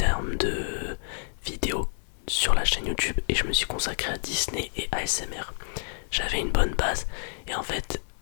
de vidéos sur la chaîne YouTube et je me suis consacré à Disney et ASMR. J'avais une bonne base et en fait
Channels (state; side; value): silent; right; digital silence